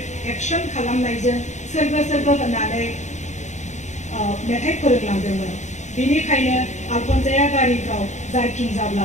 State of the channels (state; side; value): late; right; 0.34 ms